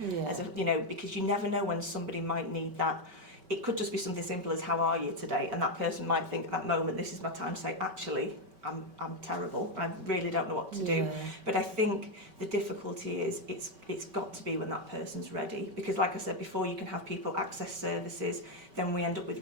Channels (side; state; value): left; late; 5.2 ms